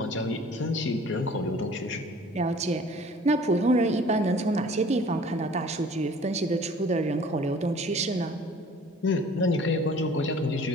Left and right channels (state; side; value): normal; both; correlation 0.49